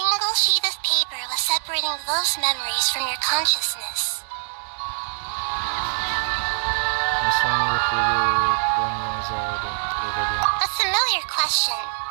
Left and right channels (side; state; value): left; silent; digital silence